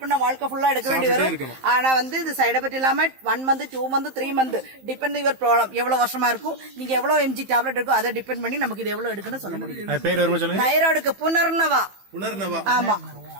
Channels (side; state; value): left; late; 15 ms